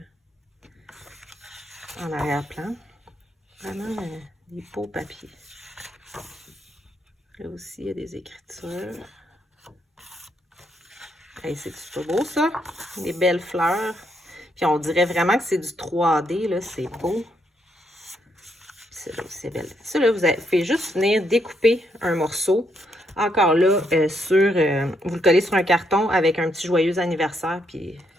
en arrière-plan. Vraiment des beaux papiers. Là aussi, il y a des écritures. Hey, c'est-tu pas beau, ça? Des belles fleurs. Puis on dirait vraiment que c'est du 3D, là. C'est beau. Celle-là aussi, c'est belle. Ça, là, vous faites juste venir découper un morceau. Encore là, vous le collez sur un carton avec un petit joyeux anniversaire, puis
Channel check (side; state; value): both; normal; correlation 0.77